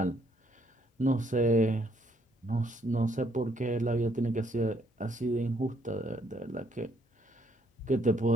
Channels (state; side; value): normal; both; correlation 0.69